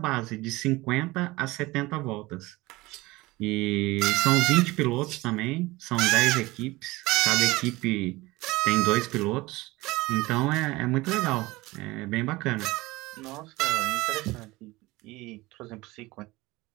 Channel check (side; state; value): left; quieter; 20.6 dB